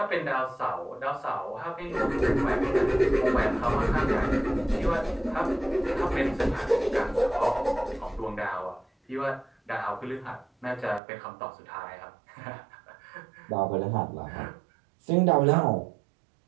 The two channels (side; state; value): left; drops out; at 11.0 s